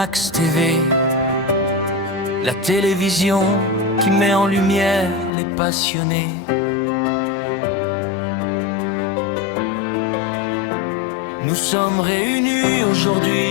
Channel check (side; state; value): right; drops out; at 5.3 s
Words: TV, la télévision qui met en lumière les passionnés. Nous sommes réunis